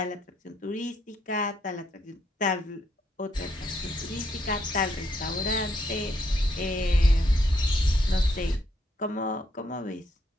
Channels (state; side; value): normal; both; correlation 0.74